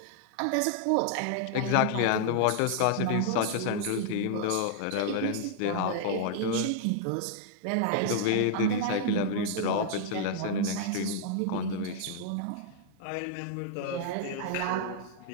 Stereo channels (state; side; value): different; both; correlation -0.01